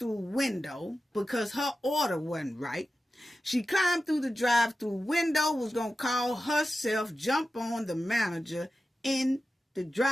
window because her order wasn't right. She climbed through the drive-through window, was going to call herself, jump on the manager in the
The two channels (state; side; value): normal; both; correlation 0.93